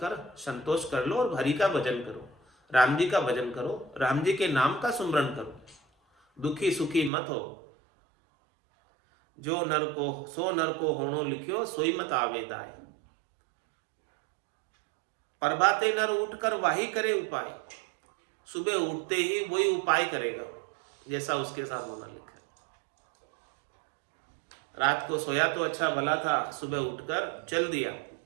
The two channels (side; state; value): left; drops out; at 7.1 s